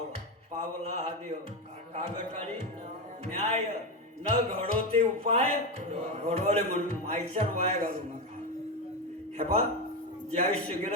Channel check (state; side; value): normal; both; correlation 0.14